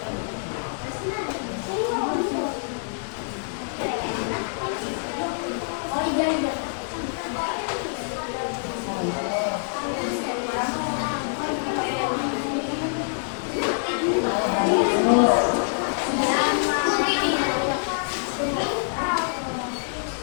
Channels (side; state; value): right; silent; digital silence